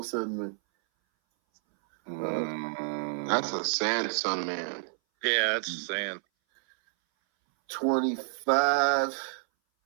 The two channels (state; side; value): silent; left; 58 dB below the other